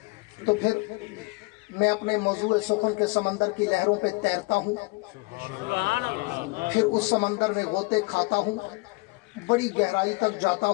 تو پھر میں اپنے موضوع سخن کے سمندر کی لہروں پہ تیرتا ہوں، پھر اس سمندر میں غوطے کھاتا ہوں، بڑی گہرائی تک جاتا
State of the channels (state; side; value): quieter; right; 26.3 dB